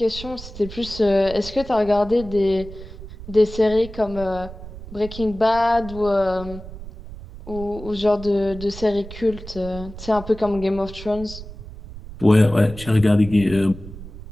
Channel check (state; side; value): noise; right; rumble, 13 dB below the sound